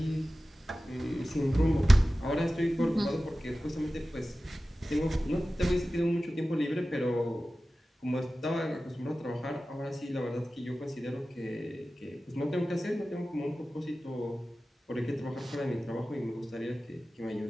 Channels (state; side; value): normal; both; correlation 0.95